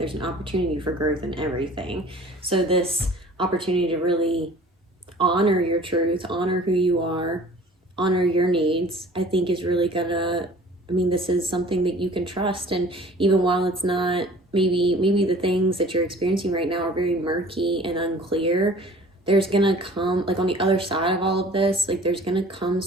an opportunity for growth in everything. So this opportunity to really honor your truth, honor who you are, honor your needs, I think is really gonna, I mean, this is something that you can trust. And even while it's not, maybe the things that you're experiencing right now are very murky and unclear, there's gonna come, like, on the other side of all of this, like, there's gonna come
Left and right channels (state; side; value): normal; both; correlation 0.48